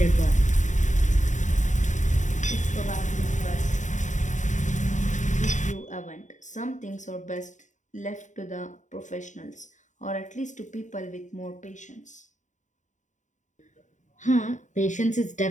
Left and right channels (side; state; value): right; late; 0.36 ms